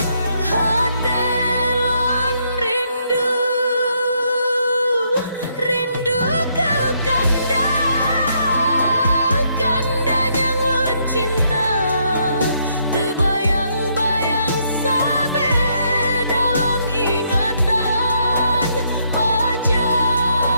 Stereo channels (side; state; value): both; inverted; correlation -0.73